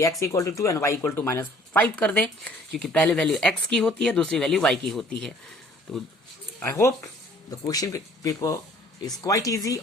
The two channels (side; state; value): both; normal; correlation 0.55